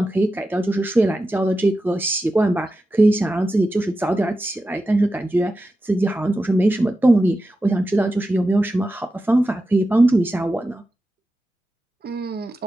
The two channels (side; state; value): both; normal; correlation 0.91